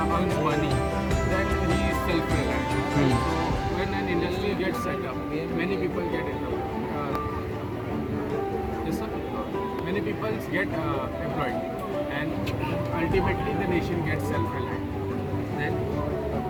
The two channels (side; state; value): both; identical; correlation 1.00